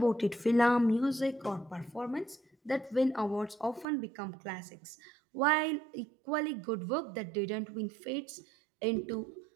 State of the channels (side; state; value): left; drops out; at 3.9 s